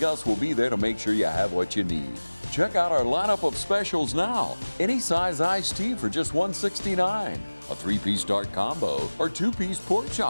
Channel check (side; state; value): both; inverted; correlation -1.00